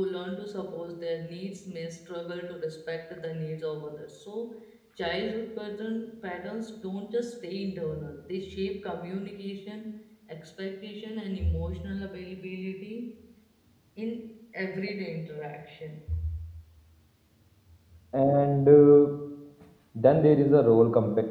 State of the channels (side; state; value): both; identical; correlation 1.00